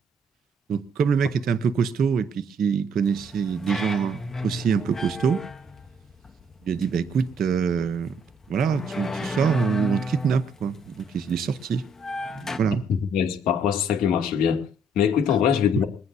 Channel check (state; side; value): normal; both; correlation 0.66